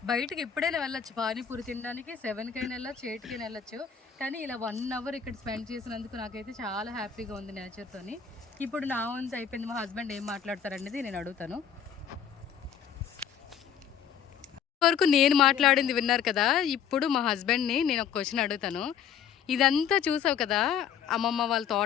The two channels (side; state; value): right; quieter; 8.1 dB